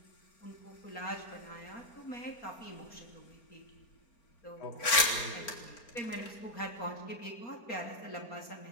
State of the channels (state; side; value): late; right; 4.4 ms